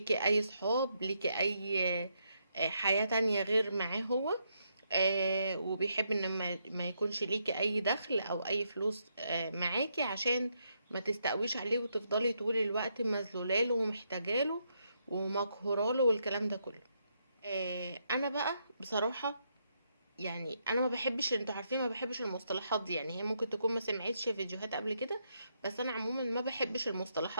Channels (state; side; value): inverted; both; correlation -0.78